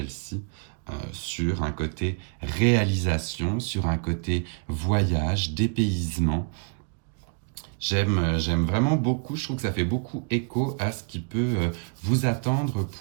sur un côté réalisation, sur un côté voyage, dépaysement. J'aime vraiment beaucoup, je trouve que ça fait beaucoup écho à ce qui peut vous attendre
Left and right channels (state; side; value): quieter; left; 39.8 dB